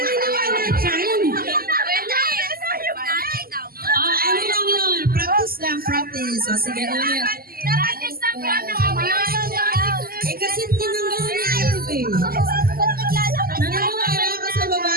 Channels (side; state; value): left; late; 0.43 ms